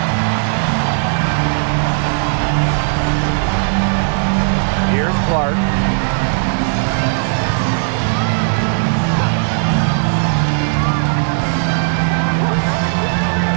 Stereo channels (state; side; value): silent; left; 69 dB below the other